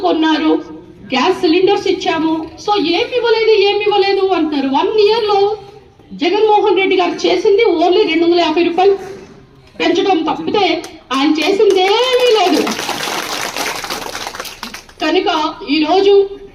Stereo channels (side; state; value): both; identical; correlation 1.00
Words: కొన్నారు, గ్యాస్ సిలిండర్స్ ఇచ్చాము. సో ఏమి ఇవ్వలేదు అంటారు. 1 year లో జగన్మోహన్ రెడ్డి గారు చేసింది ఓన్లీ 250 రూపాయలు పెంచడం తప్పితే ఆయన చేసిందేమీ లేదు. కనుక ఈ రోజు